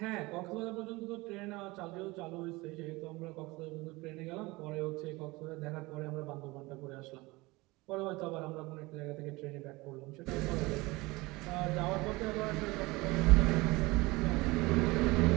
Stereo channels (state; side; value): quieter; left; 22.3 dB